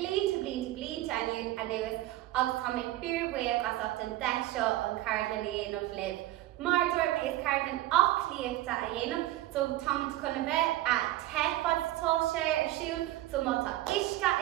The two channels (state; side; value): quieter; left; 15.9 dB